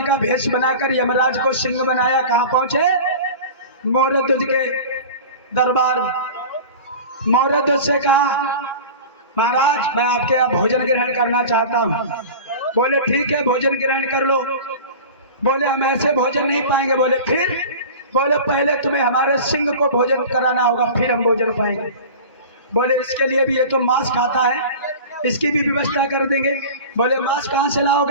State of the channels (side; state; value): both; inverted; correlation -0.35